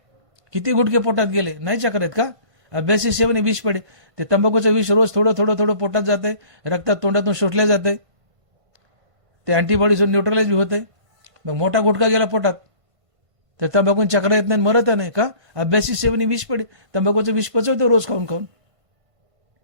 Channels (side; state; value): left; late; 1.5 ms